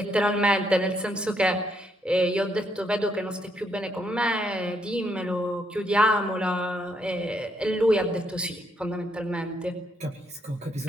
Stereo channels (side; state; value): both; normal; correlation 0.74